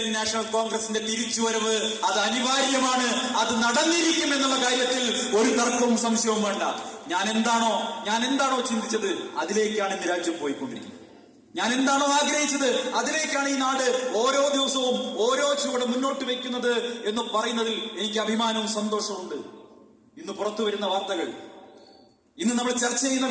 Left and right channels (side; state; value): both; identical; correlation 1.00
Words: നാഷണൽ കോൺഗ്രസിന്റെ തിരിച്ചുവരവ് അത് അനിവാര്യമാണ്. അത് നടന്നിരിക്കും എന്നുള്ള കാര്യത്തിൽ ഒരു തർക്കവും സംശയവും വേണ്ട. ഞാൻ എന്താണോ ചിന്തിച്ചത് അതിലേക്കാണ് ഇന്ന് രാജ്യം പോയിക്കൊണ്ടിരിക്കുന്നത്. ഞാൻ എന്താണോ ആഗ്രഹിച്ചത് അതിലേക്കാണ് ഈ നാട് ഓരോ ദിവസവും ഓരോ ചുവട് മുന്നോട്ട് വെക്കുന്നത് എന്ന് പറയുന്നതിൽ എനിക്ക് അഭിമാനവും സന്തോഷവും. ഇന്ന് പുറത്തു വരുന്ന വാർത്തകൾ, ഇന്ന് നമ്മൾ ചർച്ച ചെയ്യുന്ന